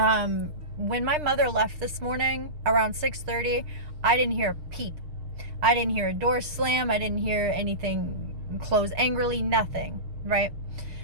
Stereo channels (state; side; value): late; left; 6.5 ms